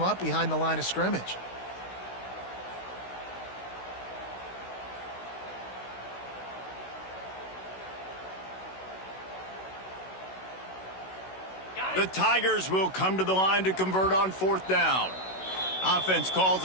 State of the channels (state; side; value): late; right; 16 ms